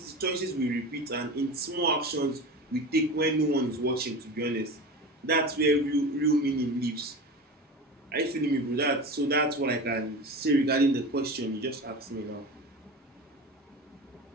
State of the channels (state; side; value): normal; both; correlation 0.30